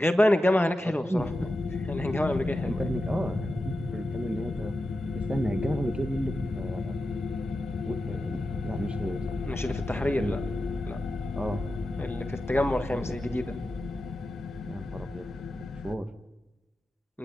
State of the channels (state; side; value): normal; both; correlation 0.91